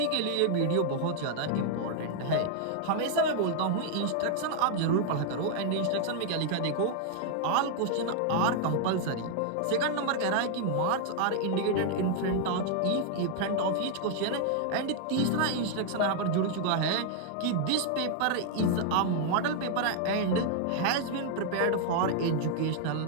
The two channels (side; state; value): both; different; correlation 0.00